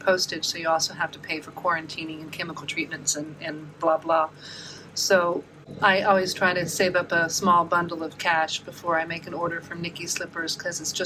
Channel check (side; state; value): both; identical; correlation 1.00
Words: So you also have to pay for quarantining and chemical treatments and blah, blah. So I always try to save up a small bundle of cash before I make an order from Nikki's Slippers, because it's